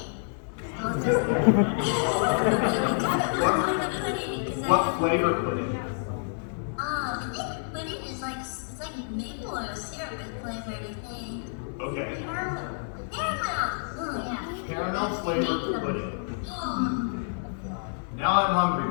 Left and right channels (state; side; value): silent; right; digital silence